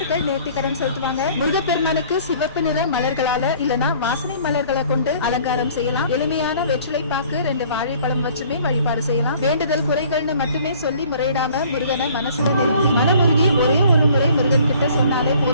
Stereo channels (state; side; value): inverted; both; correlation -0.53